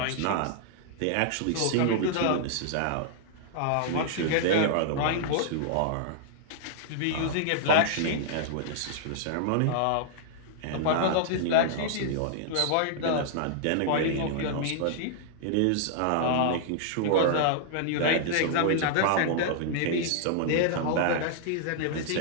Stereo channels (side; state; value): both; different; correlation -0.01